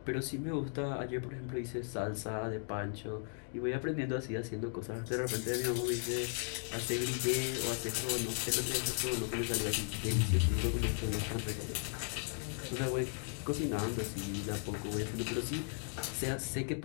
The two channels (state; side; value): silent; right; 53 dB below the other